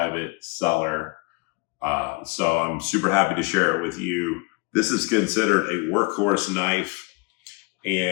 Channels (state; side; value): quieter; right; 28.4 dB